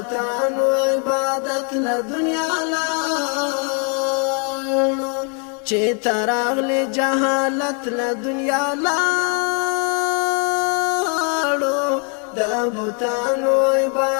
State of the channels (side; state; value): right; quieter; 39.5 dB